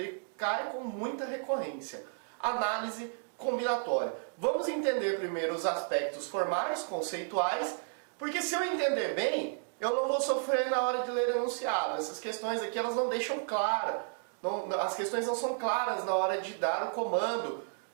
cai com muita recorrência. Análise combinatória. Vamos entender primeiro os aspectos formais, conceituais, porque se eu entender bem, eu não vou sofrer na hora de ler enunciado. Essas questões aqui elas não deixam claro. As questões não são claras na hora de dar o comando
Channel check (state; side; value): silent; left; digital silence